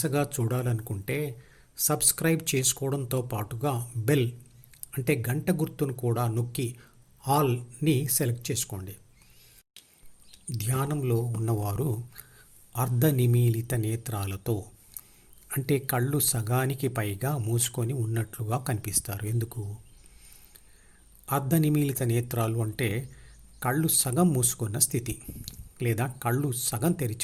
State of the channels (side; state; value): both; identical; correlation 1.00